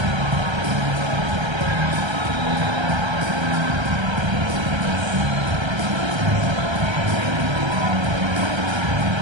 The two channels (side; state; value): left; late; 1.3 ms